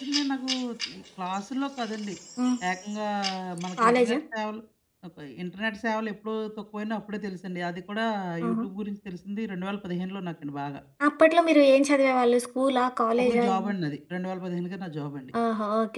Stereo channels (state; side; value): identical; both; correlation 1.00